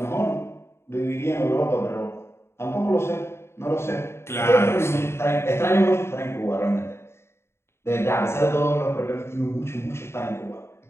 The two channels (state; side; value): late; right; 0.12 ms